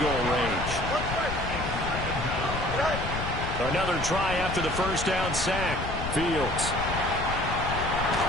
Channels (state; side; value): noise; left; rumble, 5 dB below the sound